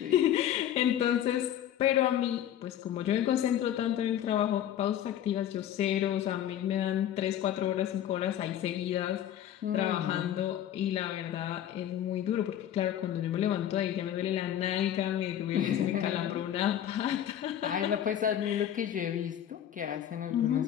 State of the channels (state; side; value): quieter; right; 10.9 dB